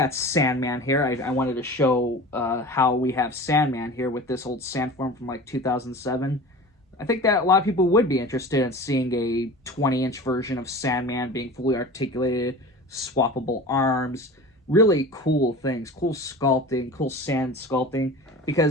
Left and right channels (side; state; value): both; normal; correlation 0.36